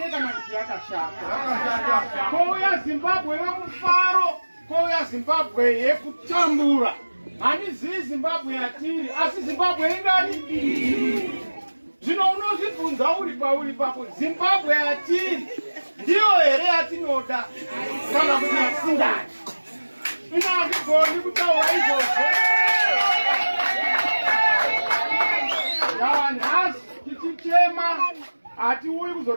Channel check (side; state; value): both; inverted; correlation -1.00